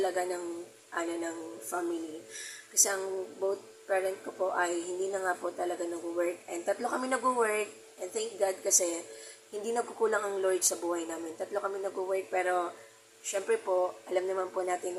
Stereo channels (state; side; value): identical; both; correlation 1.00